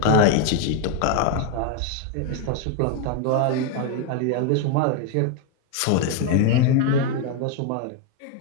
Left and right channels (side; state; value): both; different; correlation 0.01